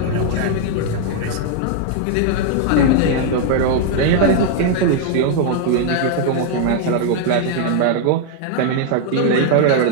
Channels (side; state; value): both; different; correlation 0.00